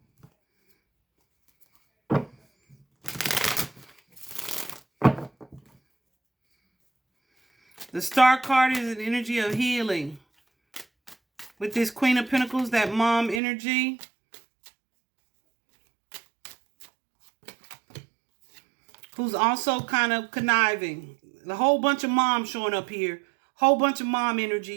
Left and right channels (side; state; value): left; drops out; at 13.4 s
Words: The Star card is an energy of healing. With this Queen of Pentacles, that mom energy. Who's also kind of conniving. A whole bunch of moms showing up here. Whole bunch of mom energy